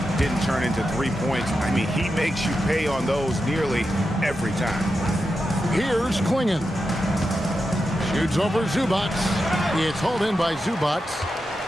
didn't turn into 3 points. I mean, he makes you pay on those nearly every time. Here's Klingon. Shoots over Zubats. It's hauled in by Zubats.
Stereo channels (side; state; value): both; normal; correlation 0.89